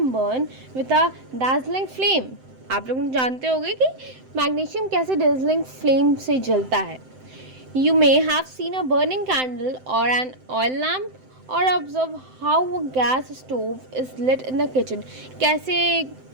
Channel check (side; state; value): left; late; 7.8 ms